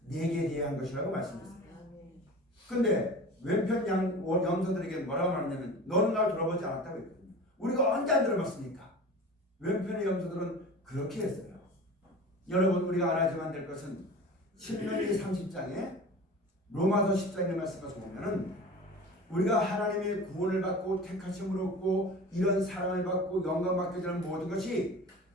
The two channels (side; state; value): both; normal; correlation 0.37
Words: 내게 대한 것이라고 말씀했어요. 근데 왼편 염소들에게 뭐라고 말하냐면 너는 날 돌아보지 않았다고 했거든요. 우리가 언제 안 들어봤습니까? 왼편의 염소들은 그렇게 했어요. 여러분 우리가 알아야만 될 것은 신명기 30장에 로마서 10장의 말씀을 보면은 우리가 하나님의 구원을 받고 택하심을 얻고 이런 사랑을 받고 영광 받게 되는 모든 것이